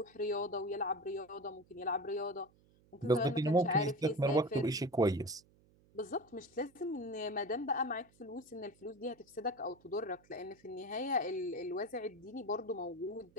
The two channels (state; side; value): noise; right; hum, 30 dB below the sound